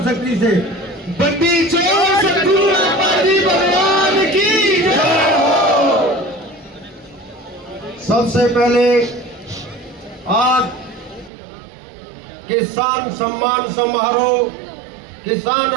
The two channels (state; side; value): drops out; left; at 11.3 s